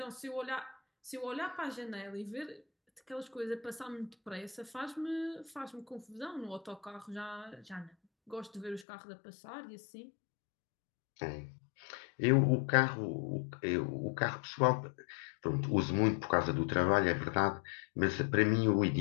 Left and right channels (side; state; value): right; drops out; at 8.8 s